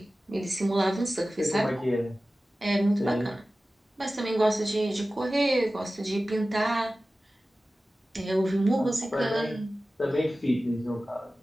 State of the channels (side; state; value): both; normal; correlation 0.96